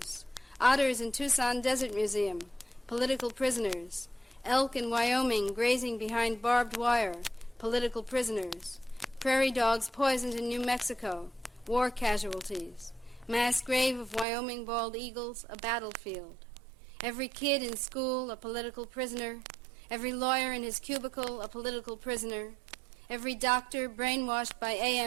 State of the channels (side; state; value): left; drops out; at 14.2 s